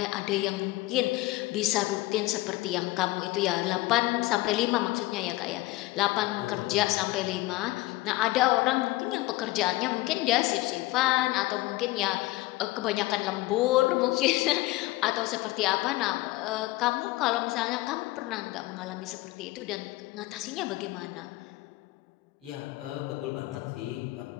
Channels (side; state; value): right; quieter; 19.4 dB